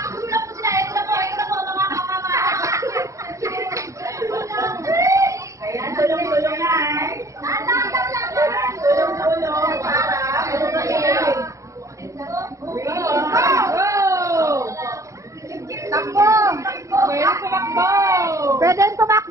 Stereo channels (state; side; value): late; left; 0.15 ms